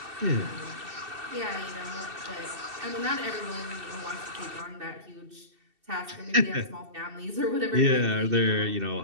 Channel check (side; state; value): left; late; 2.7 ms